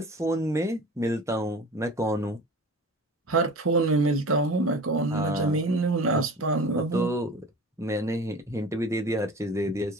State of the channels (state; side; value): normal; both; correlation 0.39